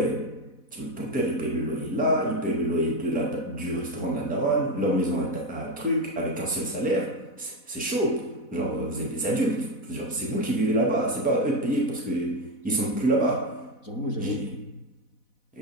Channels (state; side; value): late; right; 4.1 ms